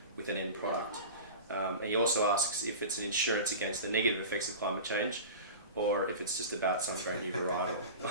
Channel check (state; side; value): inverted; both; correlation -0.32